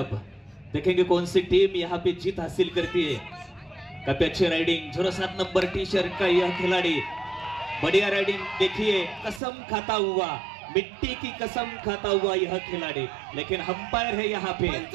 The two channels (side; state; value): left; drops out; at 9.4 s